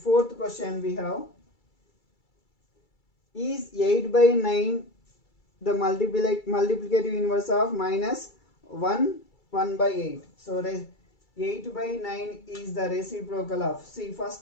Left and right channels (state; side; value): late; right; 2.3 ms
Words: question we have. Is 8 by 9 the multiplicative inverse of minus 1 by 8? So 8 by 9 is the reciprocal of, see